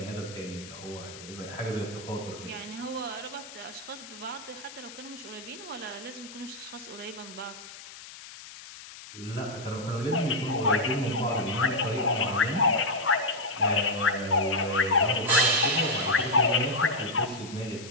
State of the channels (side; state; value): left; noise; hiss, 15 dB below the sound